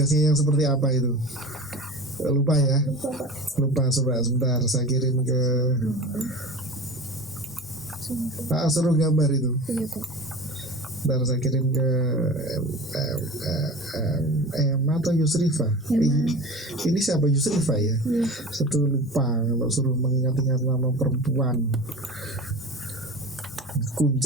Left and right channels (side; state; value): both; normal; correlation 0.34